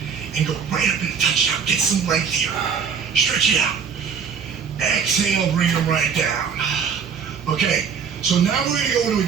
and go right up in the touchdown. Get some length here. Stretch it out. Exhale, bring them right down. Okay, so now we're going to go into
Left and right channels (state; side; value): quieter; left; 6.6 dB